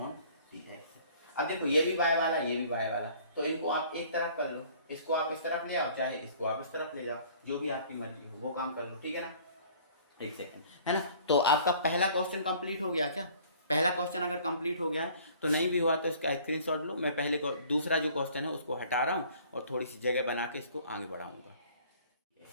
dx। अब देखो ये भी y वाला, ये भी y वाला, तो इनको आप एक तरफ कर लो, इसको आप इस तरफ ले आओ, चाहे इसको आप इस तरफ ले जाओ, जो भी आपकी मर्जी हो वो काम कर लो, ठीक है ना। एक सेकंड, है ना। तो आपका पहला क्वेश्चन कंप्लीट हो गया क्या, पहला क्वेश्चन अगर कंप्लीट हो गया है तो नहीं भी हुआ तो इसका स्क्रीनशॉट लो, मैं पहले दूसरा जो क्वेश्चन है उसको हटा रहा हूँ और थोड़ी सी जगह बना के इसको आगे बढ़ाऊंगा।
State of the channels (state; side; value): inverted; both; correlation -0.53